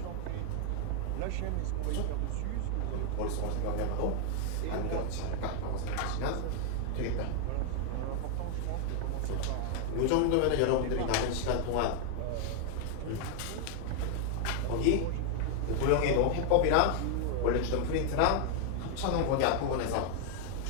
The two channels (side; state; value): both; different; correlation 0.00